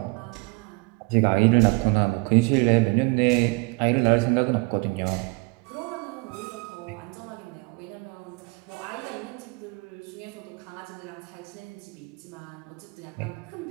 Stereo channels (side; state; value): left; quieter; 27.3 dB